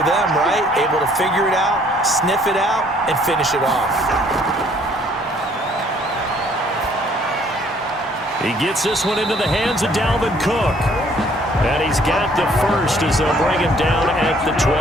them, right? Able to figure it out, sniff it out, and finish it off. He gets this one into the hands of Dalvin Cook. And he's got the first as they'll bring him down at the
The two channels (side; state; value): both; normal; correlation 0.61